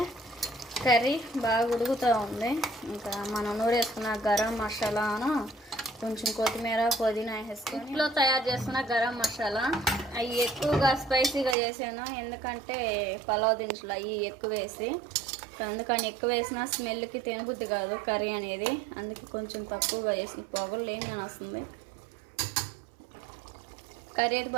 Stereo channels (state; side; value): drops out; left; at 11.6 s